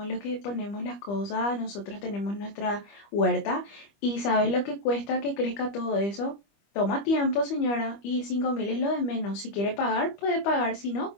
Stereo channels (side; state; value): right; late; 25 ms